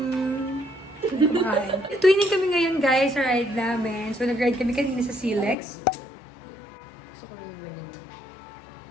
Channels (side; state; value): right; drops out; at 5.6 s